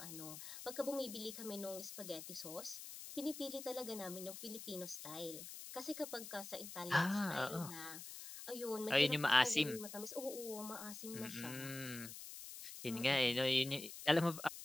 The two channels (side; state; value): left; noise; hiss, 10 dB below the sound